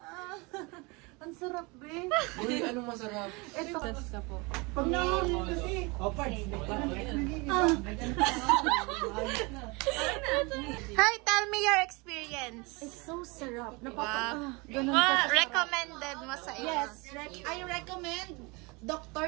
Ang sarap, Ben. Uy, anong masarap? Ito. Ka po. Pag nahuli kasi. O, parts. Hi, tell me your experience. It's so sarap. Ganun recommended mo sa iyo? Yes, I recommend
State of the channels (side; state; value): left; quieter; 27.3 dB